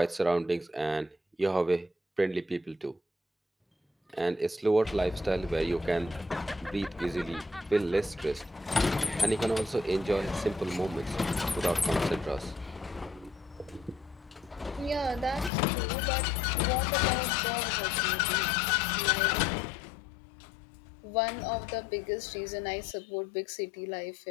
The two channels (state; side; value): drops out; right; at 15.5 s